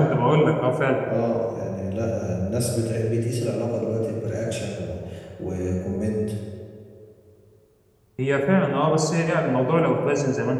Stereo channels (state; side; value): identical; both; correlation 1.00